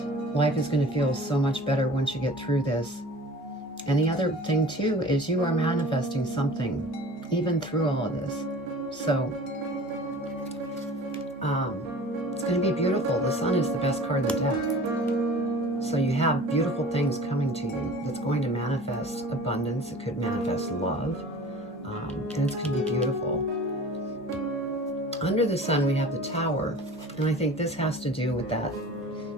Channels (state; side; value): normal; both; correlation 0.42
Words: life is going to feel so much better once you get through this. And the other thing too is you are manifesting something even through all of this. So it's going to be beautiful. The Sun is the best card in the deck. So you have beautiful things coming to you that's going to manifest abundance. It could manifest love. And it's going to be beautiful. Under the Sun, we have the Tower. And I think this has to do with that